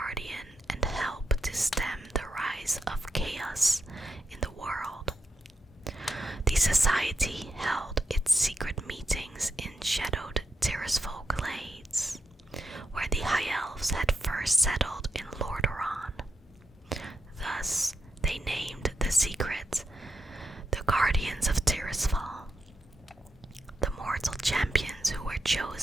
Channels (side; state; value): both; normal; correlation 0.84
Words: and help to stem the rise of chaos in the world. The society held its secret meetings in shadowed Tirisfal glades, where the High Elves had first settled in Lordaeron. Thus, they named the secret the Guardians of Tirisfal. The mortal champions who were